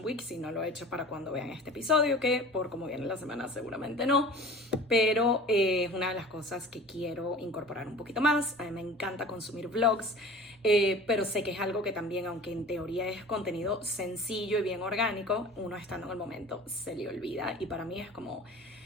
Week, si no lo he hecho para cuando vean este episodio, que por como viene la semana seguramente no. Pero es una de las cosas que quiero incorporar un poquito más. A mí me encanta consumir vlogs, pero sé que es algo que también, aunque en teoría es contenido sencillo y bien orgánico, uno estando en el momento se le olvida. Y para mí es como,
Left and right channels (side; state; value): both; normal; correlation 0.41